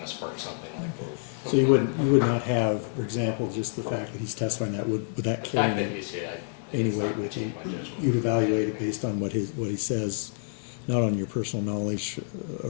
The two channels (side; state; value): right; silent; digital silence